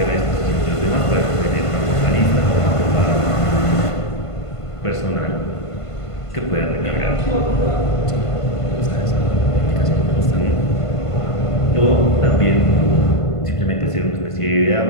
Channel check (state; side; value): late; right; 1.5 ms